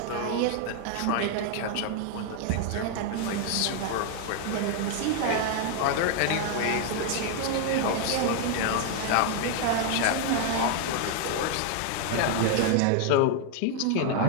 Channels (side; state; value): both; different; correlation 0.00